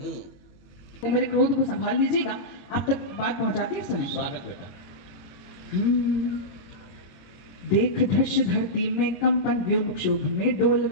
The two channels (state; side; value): late; right; 22 ms